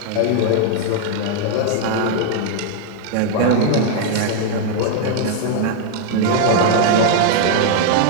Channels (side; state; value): both; different; correlation 0.00